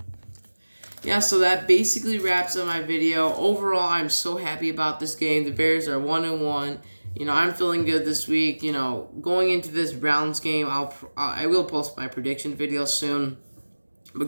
Yeah, so that basically wraps up my video. Overall, I'm so happy about this game. The Bears are 1-1. I'm feeling good this week. Going into this Browns game, I will post my prediction video soon.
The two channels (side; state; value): both; inverted; correlation -1.00